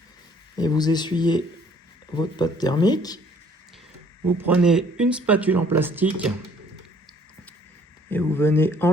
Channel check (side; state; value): both; normal; correlation 0.59